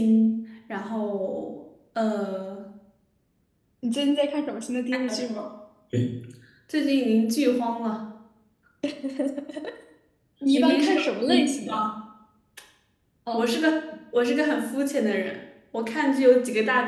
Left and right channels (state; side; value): identical; both; correlation 1.00